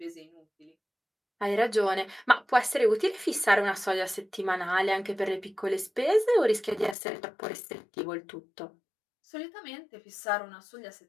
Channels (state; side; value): drops out; right; at 7.0 s